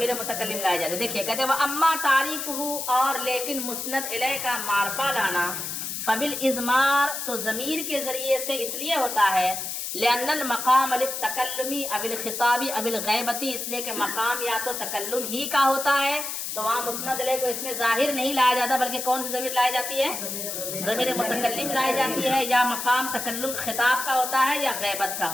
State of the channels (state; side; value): noise; left; hiss, 5 dB below the sound